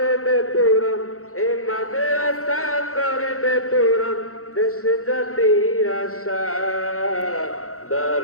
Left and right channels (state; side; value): late; right; 0.64 ms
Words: পূরণ, এ মাদ্রাসা করবে পূরণ দেশ জাতির আশা।